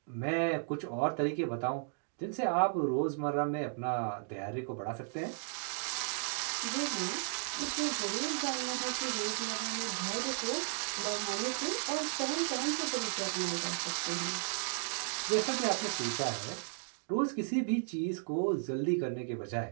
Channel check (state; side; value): silent; left; digital silence